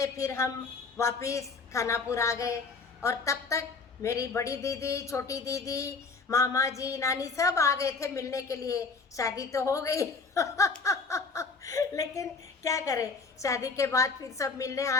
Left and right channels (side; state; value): right; quieter; 4.4 dB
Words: फिर हम वापस खानापुर आ गए। और तब तक मेरी बड़ी दीदी, छोटी दीदी, मामा जी, नानी सब आ गए थे मिलने के लिए। शादी तो हो गई लेकिन क्या करें, शादी के बाद फिर सब मिलने